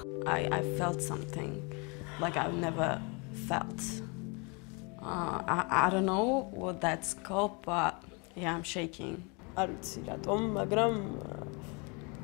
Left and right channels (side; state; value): right; quieter; 31.5 dB